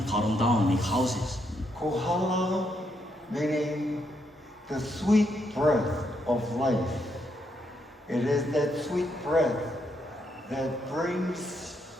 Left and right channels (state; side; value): normal; both; correlation 0.77